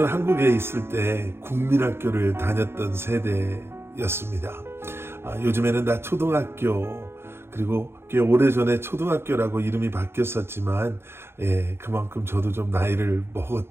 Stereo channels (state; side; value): late; left; 0.12 ms